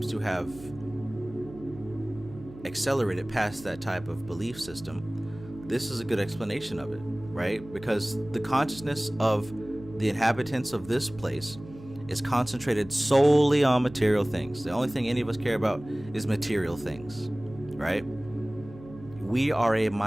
to have accelerated past that type of belief system, this is a good explanation of it, right? Because the consciousness of the inhabitants of this place is concentrated solely on material things. The only thing any of us care about is material things, right? We are a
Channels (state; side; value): noise; right; hum, 18 dB below the sound